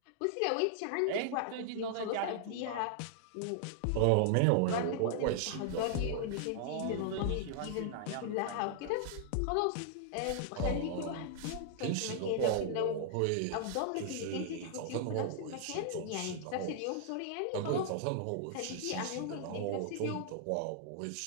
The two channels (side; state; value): both; different; correlation -0.01